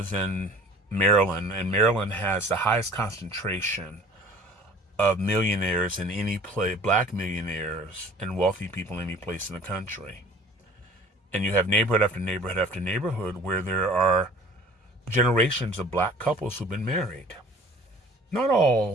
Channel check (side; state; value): both; normal; correlation 0.48